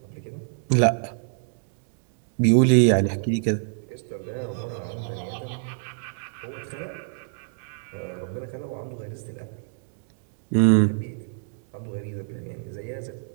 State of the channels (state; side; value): silent; left; digital silence